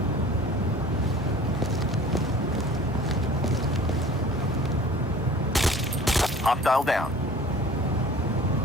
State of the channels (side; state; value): both; normal; correlation 0.45